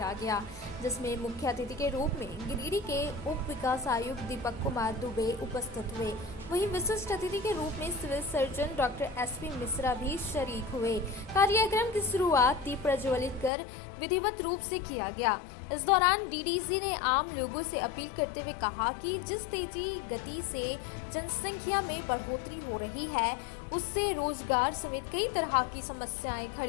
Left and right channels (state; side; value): drops out; right; at 13.5 s